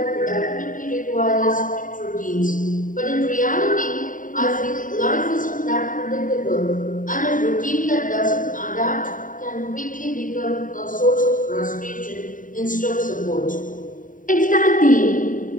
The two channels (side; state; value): right; late; 0.39 ms